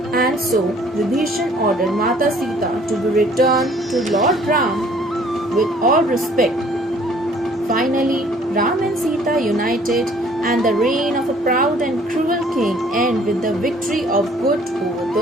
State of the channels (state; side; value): normal; both; correlation 0.57